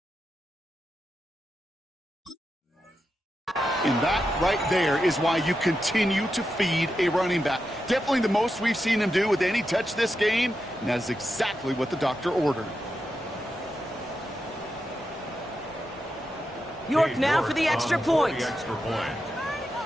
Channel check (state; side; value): normal; both; correlation 0.88